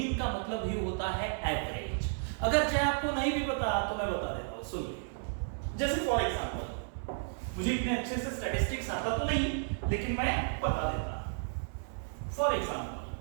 का मतलब ही होता है एवरेज। अगर चाहे आपको नहीं भी पता तो मैं बता देता हूं, सुन लीजिए। जैसे फॉर एग्जांपल, मुझे इतने अच्छे से स्टैटिस्टिक्स आता तो नहीं, लेकिन मैं बता देता। For example,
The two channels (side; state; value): left; silent; 56 dB below the other